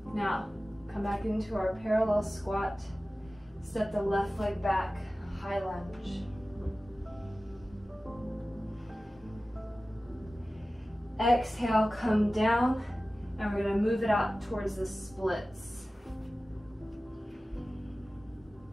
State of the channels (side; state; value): both; normal; correlation 0.96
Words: Now, come back into our parallel squat. Step the left leg back, high lunge. Exhale, come down, and we're going to move it out towards the splits.